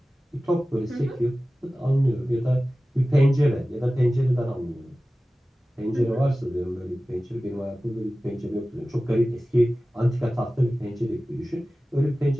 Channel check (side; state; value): both; normal; correlation 0.96